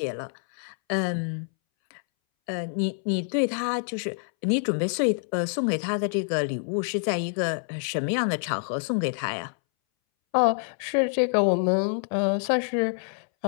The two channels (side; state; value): right; silent; 60 dB below the other